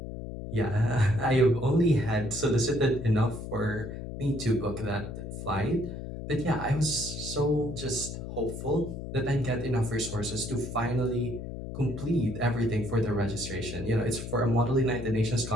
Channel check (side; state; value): left; noise; hum, 8 dB below the sound